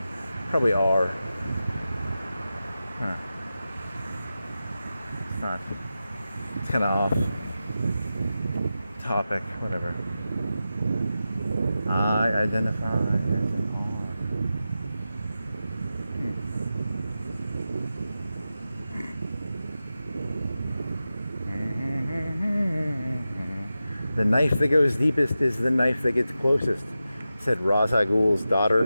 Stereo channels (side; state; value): both; inverted; correlation -0.92